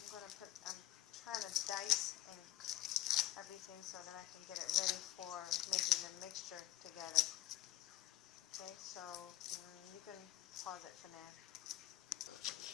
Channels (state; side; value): quieter; right; 14.8 dB